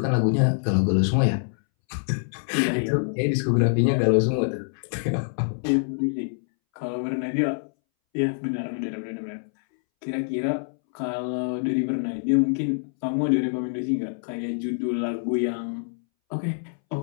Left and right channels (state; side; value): silent; right; 62 dB below the other